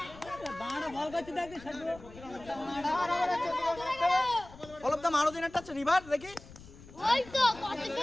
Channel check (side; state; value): left; noise; rumble, 19 dB below the sound